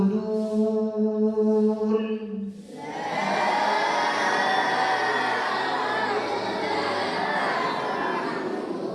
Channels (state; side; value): identical; both; correlation 1.00